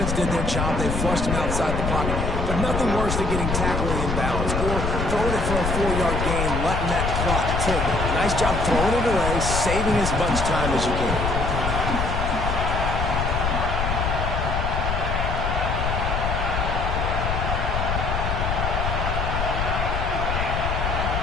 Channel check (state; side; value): noise; left; rumble, 1 dB below the sound